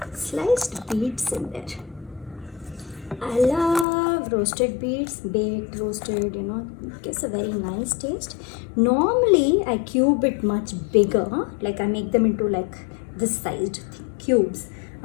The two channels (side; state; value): right; drops out; at 3.9 s